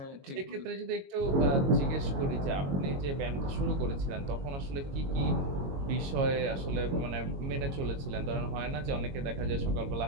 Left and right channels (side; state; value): left; late; 22 ms